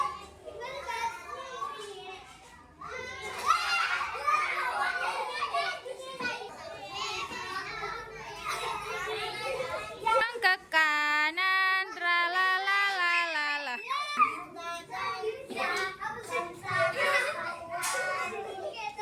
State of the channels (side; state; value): both; identical; correlation 1.00